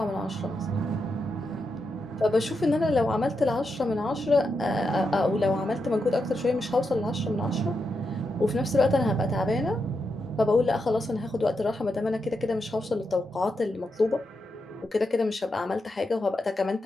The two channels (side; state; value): both; normal; correlation 0.85